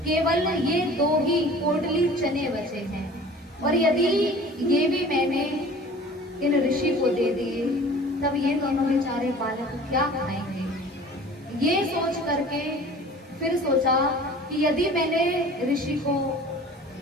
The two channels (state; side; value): normal; both; correlation 0.45